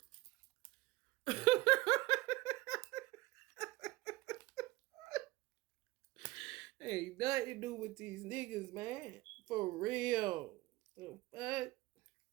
Ain't nothing to do with these niggas, man. For real. The fuck?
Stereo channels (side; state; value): left; quieter; 18.9 dB